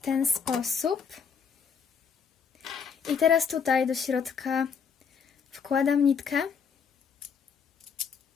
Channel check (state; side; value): quieter; right; 6.4 dB